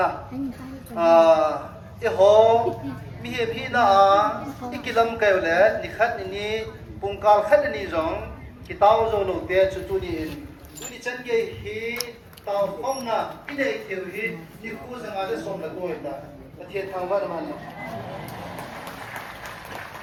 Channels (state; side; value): identical; both; correlation 1.00